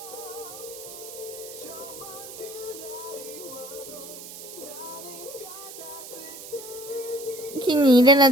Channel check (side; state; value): right; noise; hiss, 13 dB below the sound